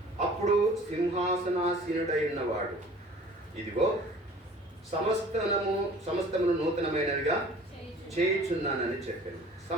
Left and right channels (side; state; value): both; normal; correlation 0.48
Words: అప్పుడు సింహాసనాసీనుడైన వాడు, ఇదిగో సమస్తమును నూతనమైనవిగా చేయుచున్నానని చెప్పాను.